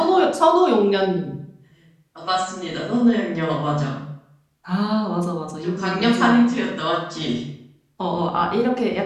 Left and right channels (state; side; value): identical; both; correlation 1.00